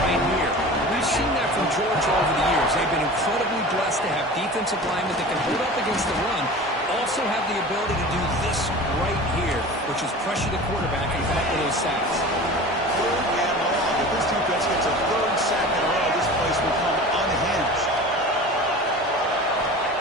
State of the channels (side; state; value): both; normal; correlation 0.37